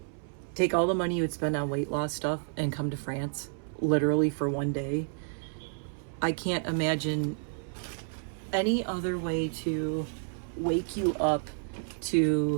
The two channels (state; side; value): silent; left; 58 dB below the other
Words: take all the money you would spend on weight loss stuff and come to France, literally for one day. I can't imagine any other way to wake you up